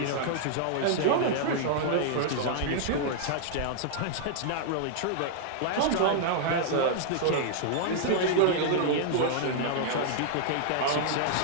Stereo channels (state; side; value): different; both; correlation -0.01